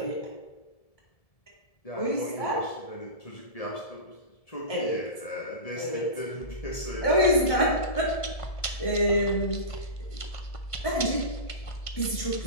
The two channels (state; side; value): late; right; 1.7 ms